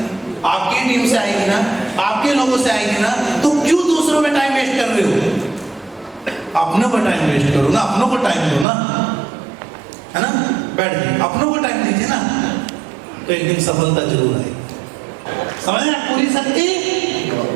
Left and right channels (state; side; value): drops out; left; at 8.7 s